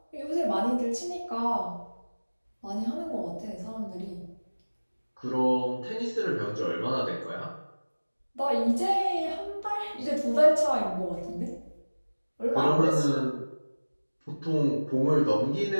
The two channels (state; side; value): inverted; both; correlation -1.00